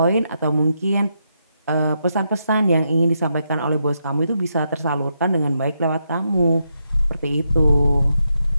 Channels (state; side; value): inverted; both; correlation -0.82